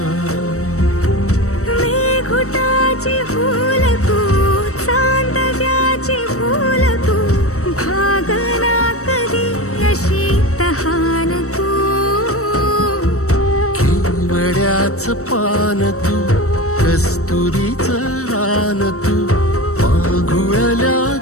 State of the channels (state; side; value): late; right; 0.65 ms